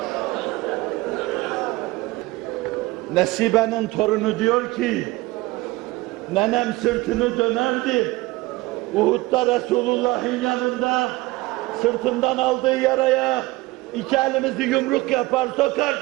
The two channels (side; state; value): left; quieter; 20.6 dB